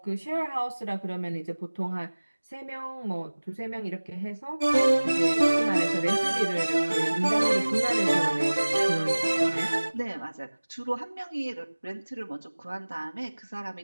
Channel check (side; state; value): both; inverted; correlation -1.00